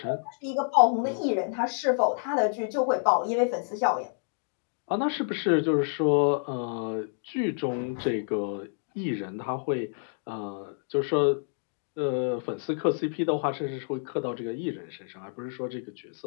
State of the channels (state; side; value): silent; right; digital silence